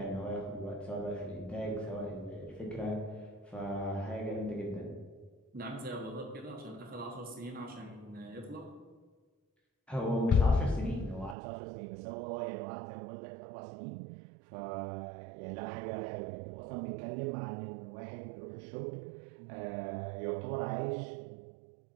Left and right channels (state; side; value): drops out; left; at 11.4 s